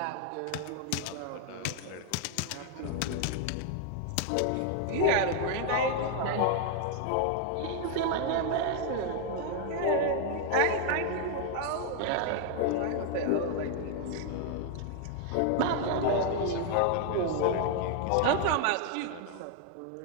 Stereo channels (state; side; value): different; both; correlation 0.01